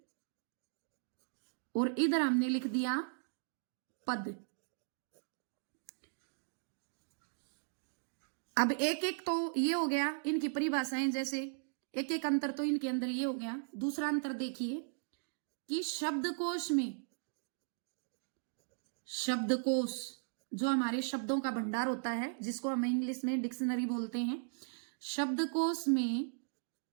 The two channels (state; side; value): silent; left; digital silence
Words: और इधर हमने लिख दिया पद। अब एक एक तो ये हो गया इनकी परिभाषाएं, जैसे एक एक अंतर तो इनके अंदर ये हो गया। दूसरा अंतर देखिए कि शब्दकोश में, शब्दकोश जो हमारे शब्दों का भंडार होता है, जिसको हम इंग्लिश में डिक्शनरी बोलते हैं, शब्दकोश में